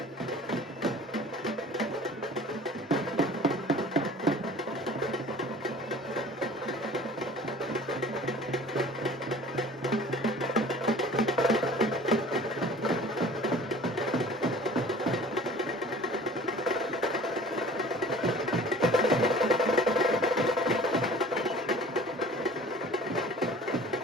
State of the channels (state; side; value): normal; both; correlation 0.46